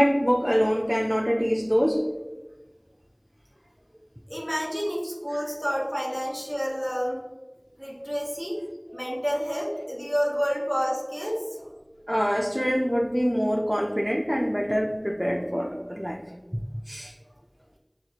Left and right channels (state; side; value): identical; both; correlation 1.00